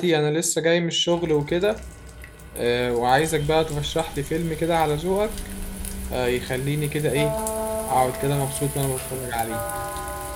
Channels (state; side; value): identical; both; correlation 1.00